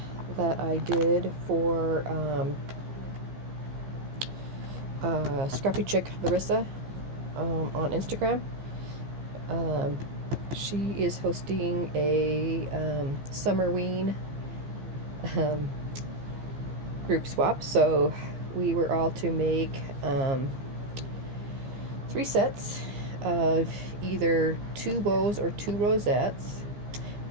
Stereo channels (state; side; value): late; left; 15 ms